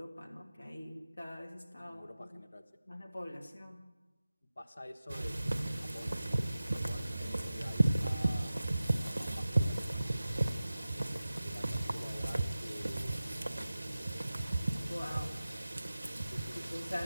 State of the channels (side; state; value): both; inverted; correlation -0.96